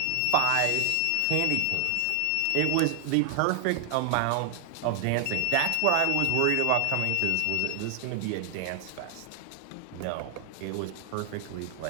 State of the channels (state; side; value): different; both; correlation 0.00